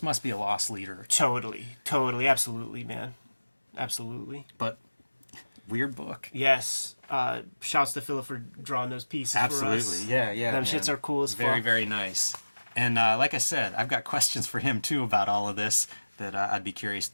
must be a loss leader. Totally. Absolutely, man. Absolutely. But weird book. Yes. Shouts to Philip for drawing those pieces for us. Absolutely. Yeah. Them shits are cool as fuck. Very, very nice. And like I said, I've got questions for him, too, about all of this that I'd be curious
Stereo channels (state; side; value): inverted; both; correlation -1.00